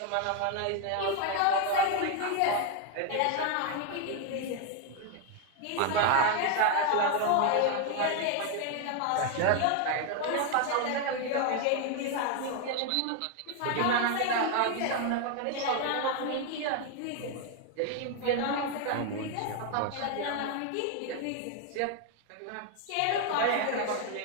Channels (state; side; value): different; both; correlation 0.01